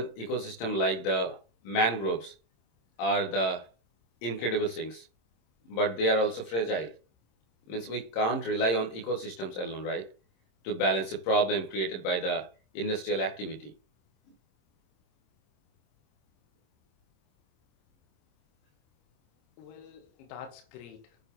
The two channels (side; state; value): right; late; 26 ms